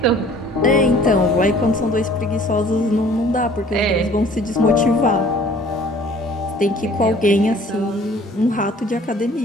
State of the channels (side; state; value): both; normal; correlation 0.52